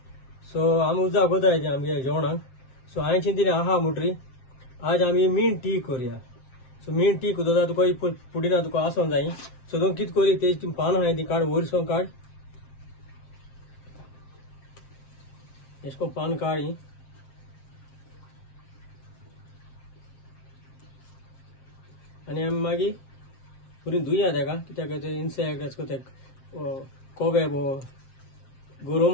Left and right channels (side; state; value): right; late; 7.6 ms